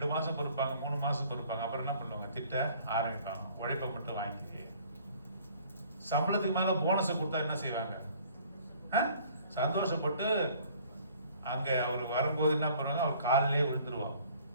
மாசம் பொறுப்பாங்க, 3 மாசம் பொறுப்பாங்க, அப்புறம் என்ன பண்ணுவாங்க? திட்ட ஆரம்பிப்பாங்க. உழைப்பை மட்டும் வாங்கிட்டு சம்பளத்துக்கு மேல போனஸை கொடுத்தா என்ன செய்வாங்க? சந்தோஷப்பட்டு அங்க அவர் வரும்போது என்ன பண்ணுவாங்க? அவர் காலிலே விழுந்துருவாங்க.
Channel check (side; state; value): both; inverted; correlation -0.55